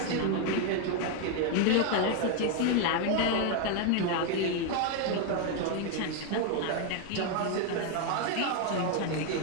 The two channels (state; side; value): different; both; correlation 0.01